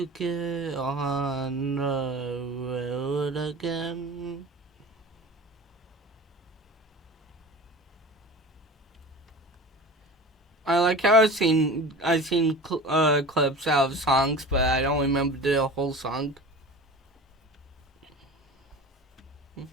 get on the road again. I like how I've seen clips out of songs, but I don't remember the whole song.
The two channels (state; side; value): normal; both; correlation 0.35